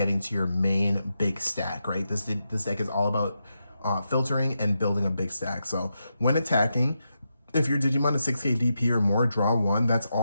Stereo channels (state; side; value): inverted; both; correlation -0.87